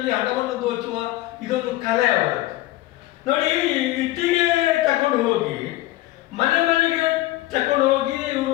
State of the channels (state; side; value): quieter; right; 16.8 dB